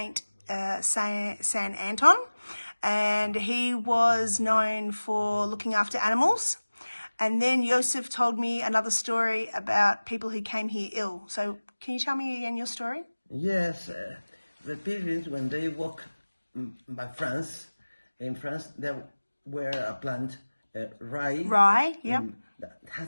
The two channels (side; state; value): both; inverted; correlation -1.00